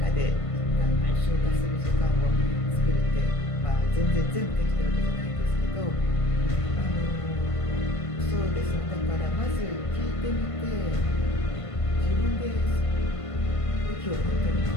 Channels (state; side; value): late; right; 1.5 ms